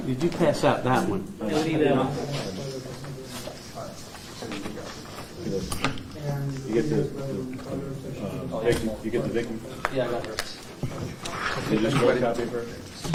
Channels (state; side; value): identical; both; correlation 1.00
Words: you pass out that one? You get the victim? Yeah, I got hers. Is this one copy of her?